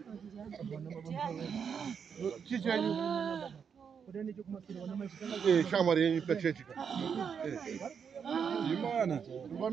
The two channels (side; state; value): left; quieter; 6.9 dB